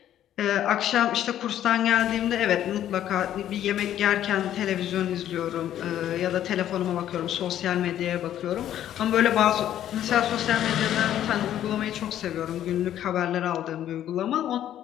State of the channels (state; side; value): quieter; right; 11.4 dB